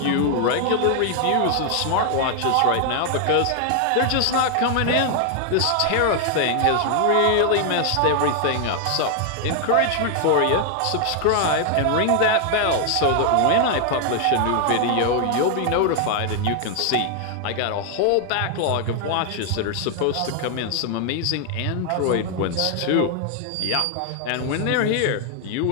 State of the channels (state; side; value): different; both; correlation 0.00